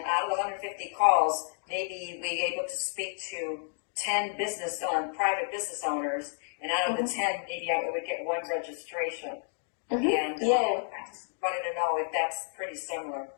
out of the 150 calls, maybe we were able to speak to 10 private business owners, and out of the 10, maybe I would get 1 registration. And I just wanted to know if that's pretty similar.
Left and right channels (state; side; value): silent; right; digital silence